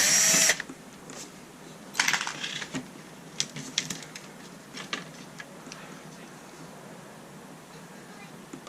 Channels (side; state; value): both; identical; correlation 1.00